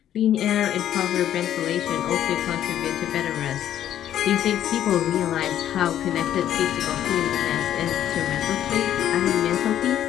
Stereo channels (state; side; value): quieter; right; 11.1 dB